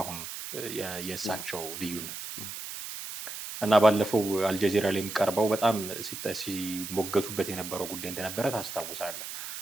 አሁን የእሳቸው ልዩነት እና ባለፈው አልጀዚራ ላይም ቀርበው በጣም ሲሞገቱበት የነበረው ጉዳይ እንደነበረ ታስታውሳለህ።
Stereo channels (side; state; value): right; noise; hiss, 8 dB below the sound